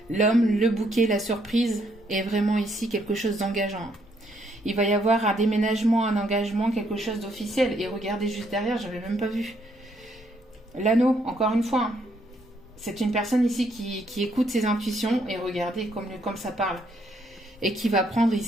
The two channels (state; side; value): normal; both; correlation 0.71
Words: L'homme, le bouquet, la surprise est vraiment ici quelque chose d'engageant. Il va y avoir un déménagement, un engagement, quelque chose d'officiel. Et regardez juste derrière, j'avais même pas vu. L'anneau, encore une fois. Hein. C'est une personne ici qui écoute ses intuitions et regardez comme ça parle. Et qui va prendre